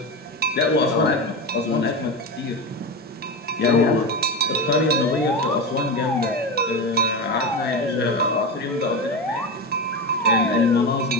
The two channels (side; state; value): both; normal; correlation 0.20